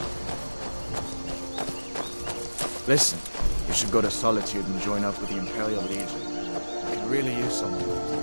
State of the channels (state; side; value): inverted; both; correlation -1.00